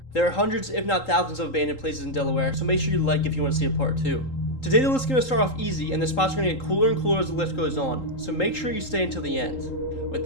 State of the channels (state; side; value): late; right; 3.8 ms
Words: There are hundreds if not thousands of abandoned places in Delaware, so make sure you like if you want to see a part 2. Today the list is going to start off easy and the spots are going to get cooler and cooler as the list goes on, so make sure you stay until the end. With